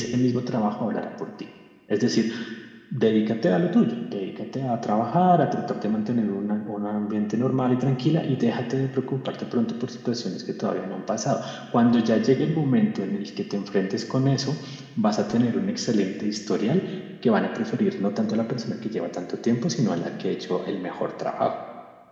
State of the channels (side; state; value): both; identical; correlation 1.00